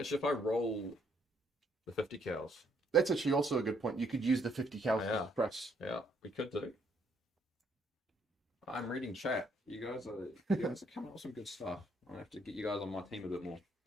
roll the 50 cals, That's actually also a good point. You could use the 50 cal Yeah. press. Yeah, we could do. I'm reading chat. You guys are coming up with some good stuff. I have to get you guys on my team a bit more.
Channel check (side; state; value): both; normal; correlation 0.70